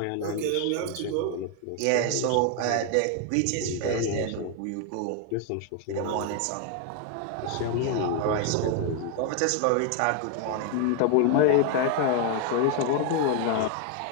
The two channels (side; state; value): both; different; correlation 0.01